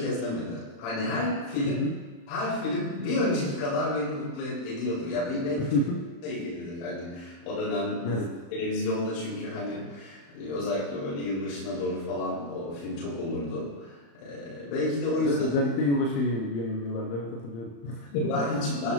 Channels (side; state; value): right; late; 35 ms